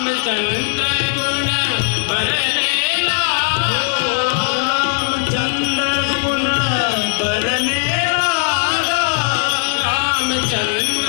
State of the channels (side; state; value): right; silent; 62 dB below the other